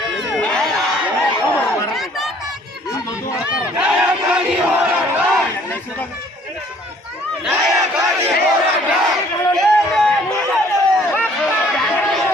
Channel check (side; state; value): both; normal; correlation 0.58